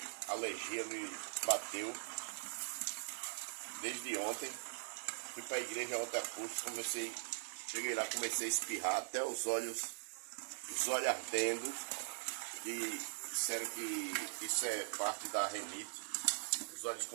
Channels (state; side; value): silent; left; digital silence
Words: alergia me bateu desde ontem. Fui para a igreja ontem a curso, cheguei lá, comecei a espirrar até os olhos ardendo. E disseram que isso é parte da renite. Os olhos